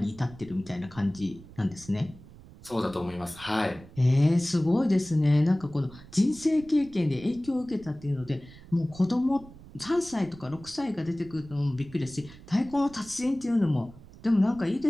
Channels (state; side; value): noise; right; rumble, 20 dB below the sound